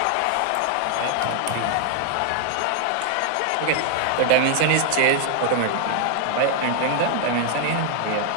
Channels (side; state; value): both; different; correlation 0.00